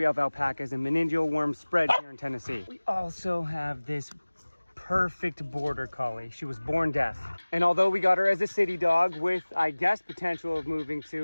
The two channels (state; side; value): inverted; both; correlation -1.00